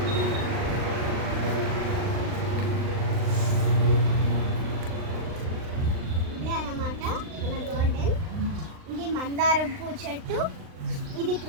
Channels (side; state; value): left; late; 39 ms